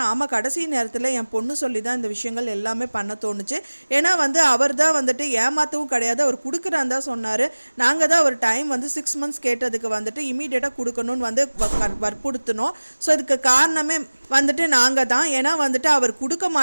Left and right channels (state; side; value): inverted; both; correlation -1.00